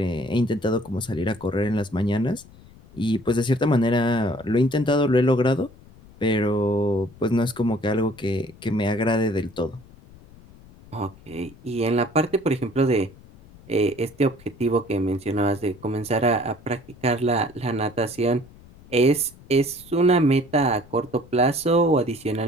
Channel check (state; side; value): noise; left; rumble, 23 dB below the sound